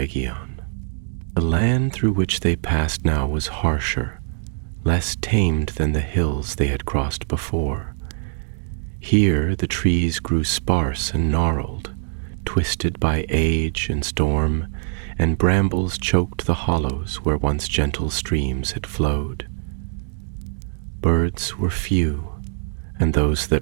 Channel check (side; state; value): left; silent; digital silence